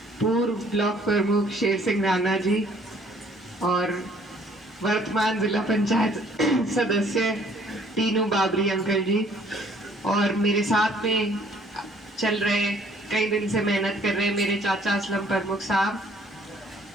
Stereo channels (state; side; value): normal; both; correlation 0.60